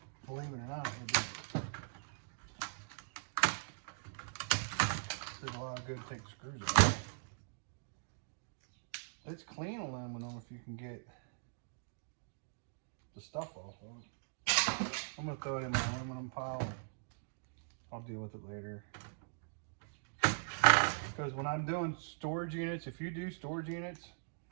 believe it or not, there's a lot of good thick screws in it. It's clean aluminum if you can get the stuff off of it. I'm gonna throw it in my aluminum pile. I'll deal with it later. Because when I'm doing storage units, if you do storage units,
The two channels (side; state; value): left; silent; digital silence